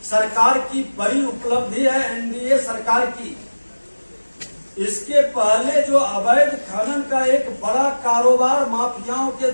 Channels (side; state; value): both; inverted; correlation -1.00